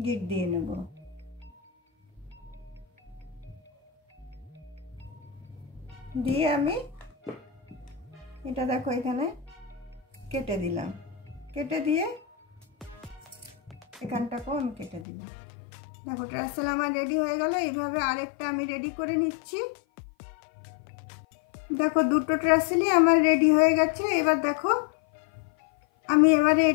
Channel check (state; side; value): drops out; right; at 15.1 s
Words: গিঁট দিয়ে নেব। দিয়ে আমি এটা দেখো এখানে কেটে দিলাম, কেটে দিয়ে এখানটাকেও আমি কেটে দিলাম। দেখো ট্রাসেল আমার রেডি হয়ে গেল। এইভাবে আরেকটা আমি রেডি করে নিচ্ছি। দেখো দুটো ট্রাসেলই আমার রেডি হয়ে গেছে। এবার দেখো আমি এবারে